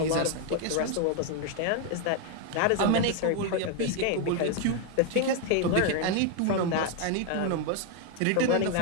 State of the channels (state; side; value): different; both; correlation 0.01